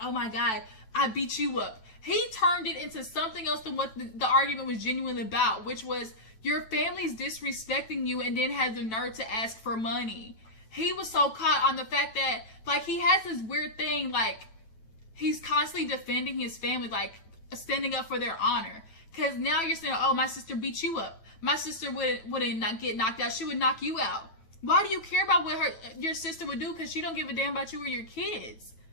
oh my God, I beat you up. He turned it into something else than what the argument was genuinely about, which was your family's disrespecting you and then had the nerve to ask for money. He was so caught on the fact that, like, he has this weird thing, like, he's constantly defending his family, like standing up for their honor. Because now you're saying, oh, my sister beat you up. My sister wouldn't not get knocked out. She would knock you out. Why do you care about what your sister would do? Because she don't give a damn about you or your kids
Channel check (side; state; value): right; late; 9.1 ms